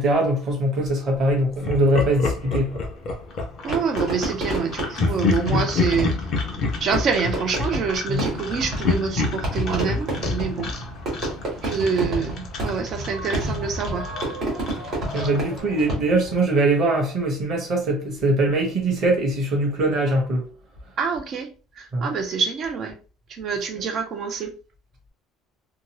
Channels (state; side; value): normal; both; correlation 0.51